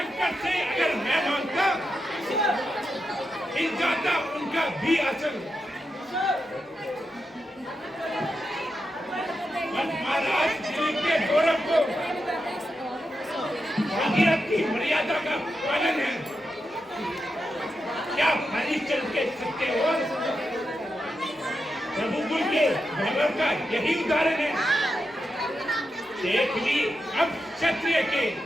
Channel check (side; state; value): both; normal; correlation 0.87